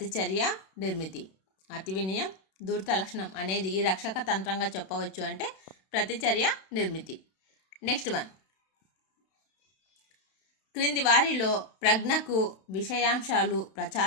నిర్మితి. అతి వినయం ధూర్త లక్షణం అనేది ఈ రక్షక తంత్రంగా చెప్పవచ్చు అంటే ప్రతిచర్య, నిర్మితి. నెక్స్ట్ వన్, క్రింది వారిలో ప్రజ్ఞకు విషయాంశాలు,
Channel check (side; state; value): right; late; 32 ms